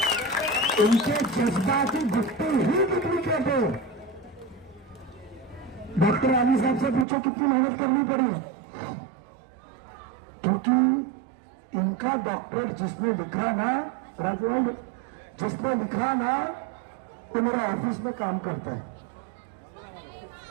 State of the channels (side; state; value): left; drops out; at 7.1 s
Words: इनके जज्बाती घुट्टी ही डुप्लीकेट है। डॉक्टर आली साहब से पूछो कितनी मेहनत करनी पड़ी, क्योंकि इनका डॉक्टर जिसने लिखा ना, राजवाल जिसने लिखा ना, वो मेरा ऑफिस में काम करता है।